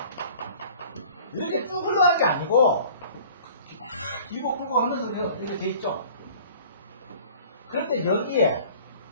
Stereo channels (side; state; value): both; inverted; correlation -0.48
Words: 이렇게 쭉 흘러갈 게 아니고, 막 길고 끌고 하면서 이렇게 돼 있죠. 그런데 여기에